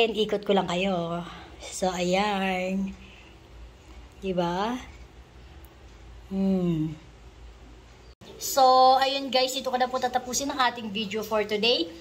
ikot ko lang kayo. So, ayan. Diba? So, ayun guys, ito ko na po tatapusin ang ating video for today.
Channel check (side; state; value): both; identical; correlation 1.00